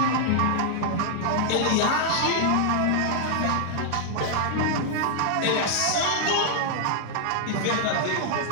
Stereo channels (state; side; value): different; both; correlation -0.01